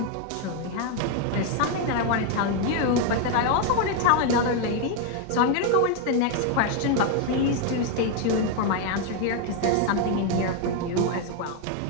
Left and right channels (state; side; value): different; both; correlation 0.01